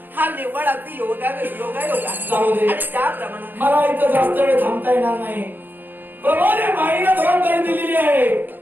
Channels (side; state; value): left; late; 0.091 ms